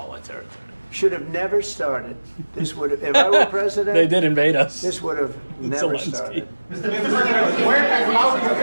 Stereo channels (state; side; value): inverted; both; correlation -1.00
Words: territory. Should have never started. This would have, if I were president, They did invade us. this would have never Zelensky. started.